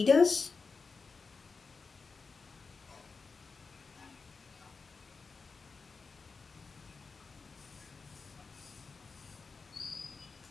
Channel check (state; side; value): quieter; right; 4.6 dB